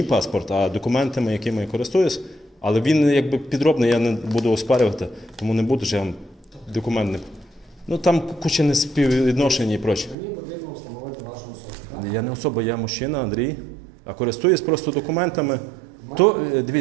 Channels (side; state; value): left; drops out; at 10.2 s